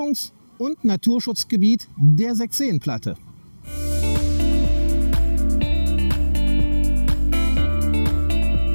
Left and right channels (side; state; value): both; inverted; correlation -1.00